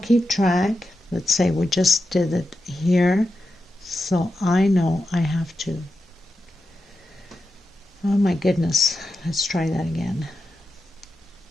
keep track, let's say we just did it here, so I know I have to, oh my goodness, let's try that again.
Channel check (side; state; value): both; normal; correlation 0.89